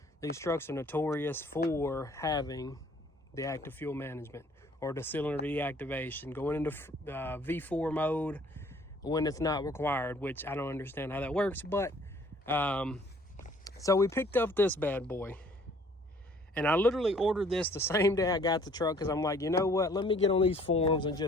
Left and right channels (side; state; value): both; normal; correlation 0.57